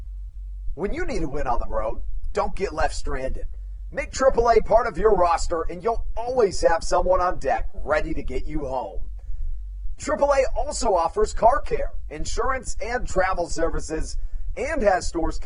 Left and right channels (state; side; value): identical; both; correlation 1.00